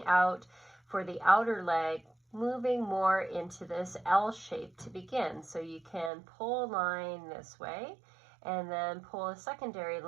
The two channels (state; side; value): drops out; left; at 6.1 s